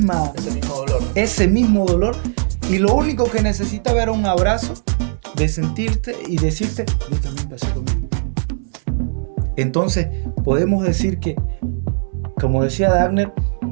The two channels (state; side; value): silent; left; 67 dB below the other